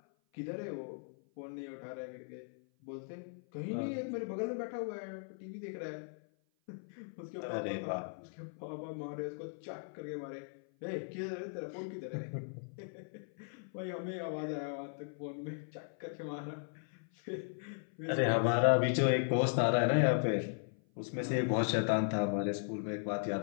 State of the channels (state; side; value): silent; right; 53 dB below the other